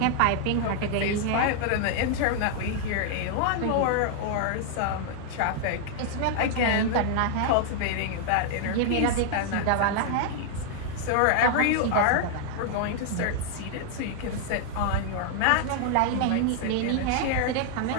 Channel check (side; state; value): both; different; correlation 0.00